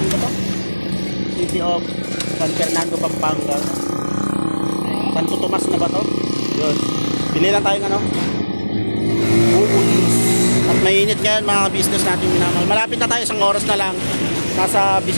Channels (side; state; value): both; inverted; correlation -1.00